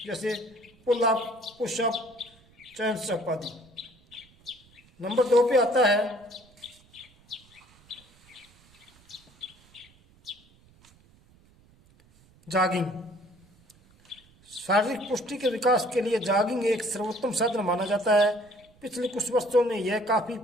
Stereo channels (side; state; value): right; noise; rumble, 29 dB below the sound